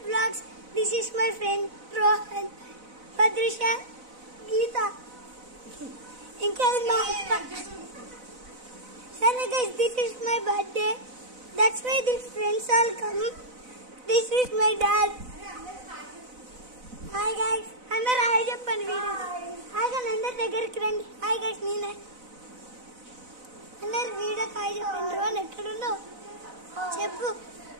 Vlogs. This is my friend Rohan, Padrisha, Geeta. Sorry guys, this is my birthday. That's why these friends all come. This is my dad. Hi guys. Andar hi cheppandi video. Hi guys, andar దగ్గరికి రండి. Hi guys, నేనే. అందరు video hi చెప్పండి. రోన్ ఎక్కడున్నావు? చెప్పు.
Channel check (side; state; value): left; late; 4.0 ms